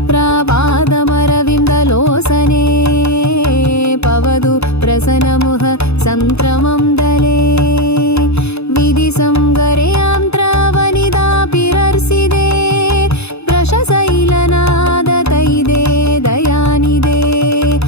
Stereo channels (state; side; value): late; right; 0.79 ms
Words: पवतु प्रसन्नमुह संत्रमं दले विधिसंगरयां त्रवनिदापिरर्सिदे वृषशैलनादतैदे दयानिदे